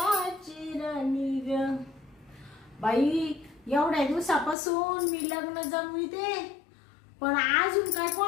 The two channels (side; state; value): right; drops out; at 4.5 s